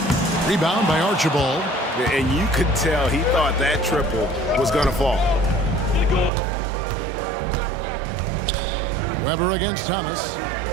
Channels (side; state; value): left; drops out; at 6.3 s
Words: Rebound by Archibald. And you could tell he thought that triple was going to fall. Weber against Thomas.